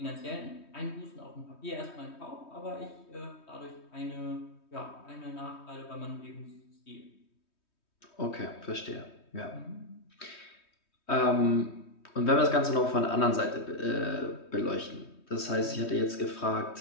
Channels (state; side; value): late; right; 3.2 ms